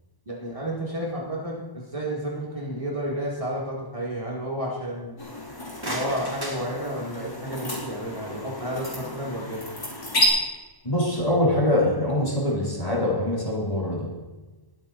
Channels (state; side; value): late; right; 1.1 ms